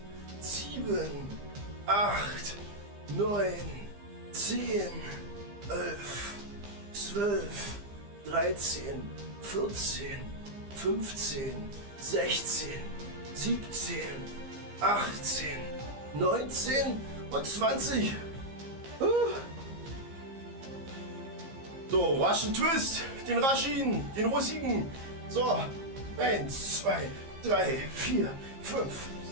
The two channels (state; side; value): late; left; 15 ms